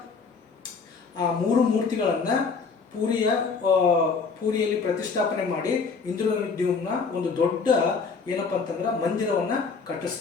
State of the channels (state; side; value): quieter; right; 5.0 dB